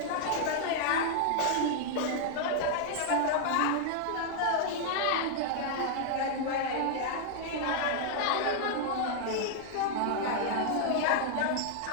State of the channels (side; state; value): both; different; correlation -0.01